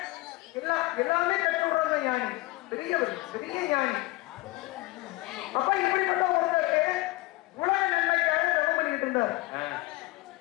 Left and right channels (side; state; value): right; quieter; 20.8 dB